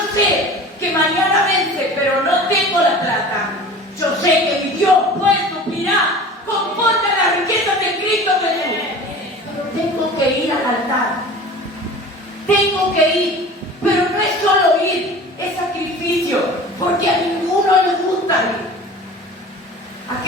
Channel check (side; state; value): both; normal; correlation 0.39